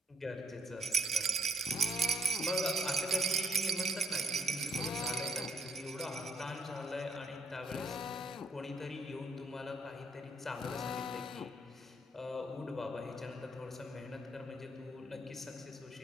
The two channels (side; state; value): both; normal; correlation 0.72